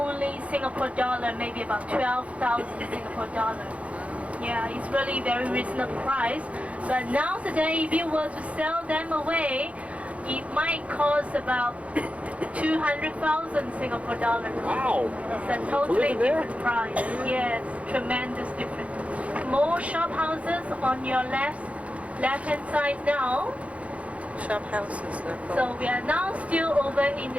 Singapore dollar, maybe about 12,000 Singapore dollar. Yeah, it's really very reasonable price. But now today, if you were to sell them away, it might cost about 200,000 Singapore dollars. Wow! It's a totally different price. Yes, tremendous difference. More shop houses on your left-hand side now. Shop houses, they're called. So we are now still over in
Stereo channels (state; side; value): late; left; 0.064 ms